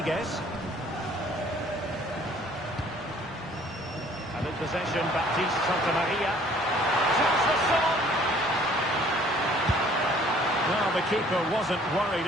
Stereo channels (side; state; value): both; normal; correlation 0.56